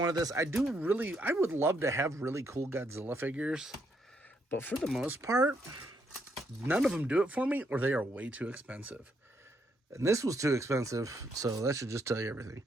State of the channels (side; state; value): both; normal; correlation 0.75